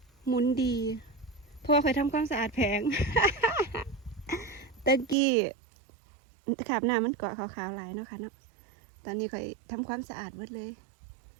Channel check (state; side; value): drops out; left; at 5.2 s